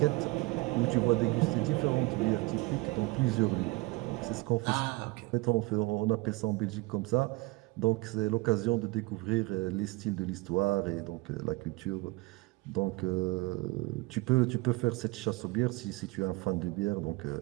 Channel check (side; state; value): left; quieter; 23.3 dB